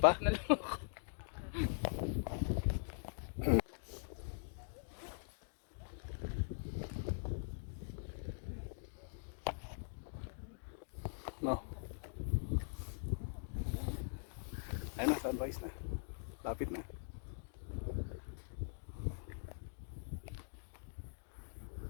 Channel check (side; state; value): right; silent; digital silence